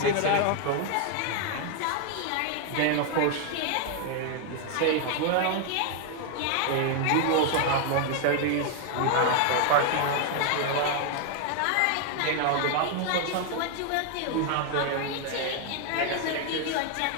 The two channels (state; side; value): different; both; correlation 0.00